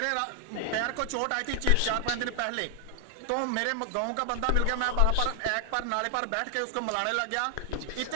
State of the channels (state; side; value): different; both; correlation 0.00